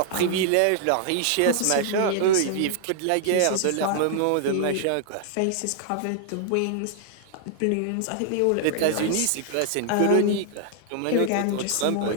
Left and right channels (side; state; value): both; different; correlation -0.01